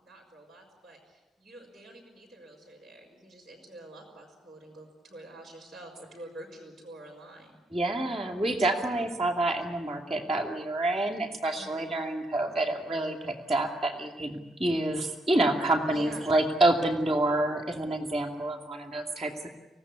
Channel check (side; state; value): both; normal; correlation 0.75